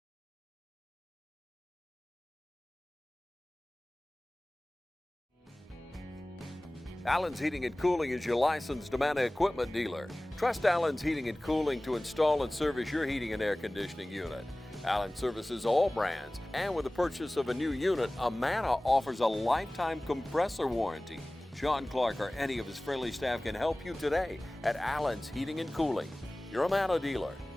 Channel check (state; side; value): normal; both; correlation 0.98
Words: Allen's Heating and Cooling is your licensed Amana equipment dealer. Trust Allen's Heating and Cooling to install and service your heating and air conditioning unit. Allen services all brands, and with the purchase of a new unit, Amana offers a lifetime compressor warranty. Sean Clark or any of his friendly staff can help you today at Allen's Heating and Cooling. Your Amana dealer.